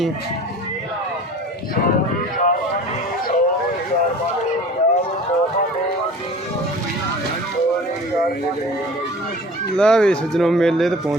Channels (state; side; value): normal; both; correlation 0.42